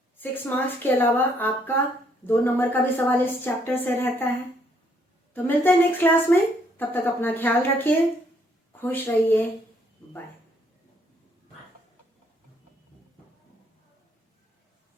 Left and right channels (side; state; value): both; normal; correlation 0.69